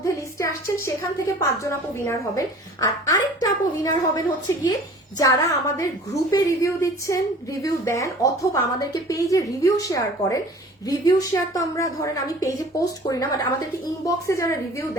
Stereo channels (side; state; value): both; normal; correlation 0.46